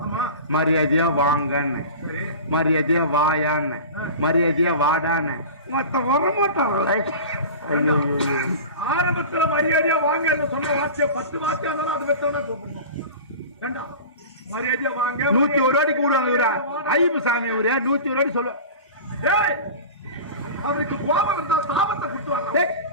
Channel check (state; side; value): inverted; both; correlation -0.34